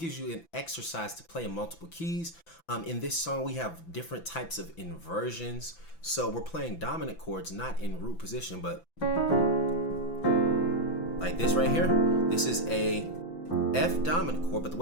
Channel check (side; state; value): right; late; 6.0 ms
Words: you an exercise to play in multiple keys. In this song, we have different types of inversions. So we're playing dominant chords, not in root position, but like this right here. This is a F dominant chord, but the